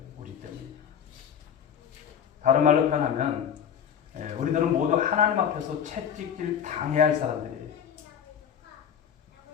우리 때문입니다. 다른 말로 표현하면 우리들은 모두 하나님 앞에서 채찍질 당해야 할 사람들이에요.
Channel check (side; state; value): right; quieter; 8.4 dB